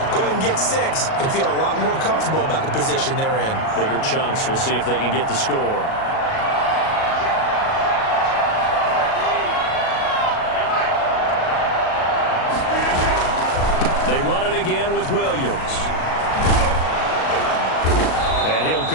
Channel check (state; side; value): late; right; 37 ms